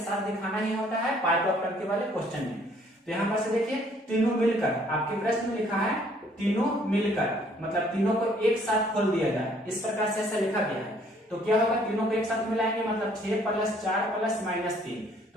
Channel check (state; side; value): normal; both; correlation 0.61